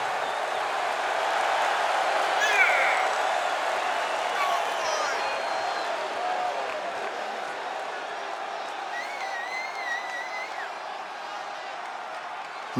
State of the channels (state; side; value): identical; both; correlation 1.00